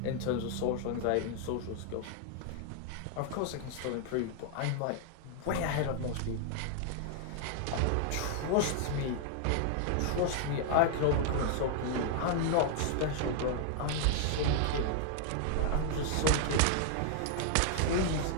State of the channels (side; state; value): both; different; correlation 0.00